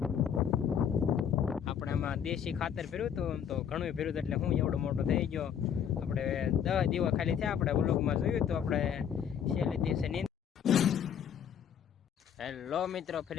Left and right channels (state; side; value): quieter; right; 8.4 dB